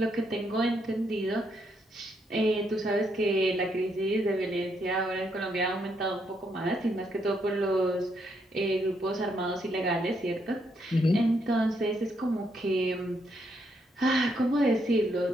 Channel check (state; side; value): normal; both; correlation 0.76